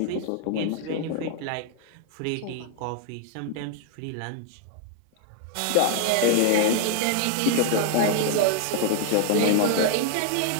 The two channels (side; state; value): both; different; correlation 0.00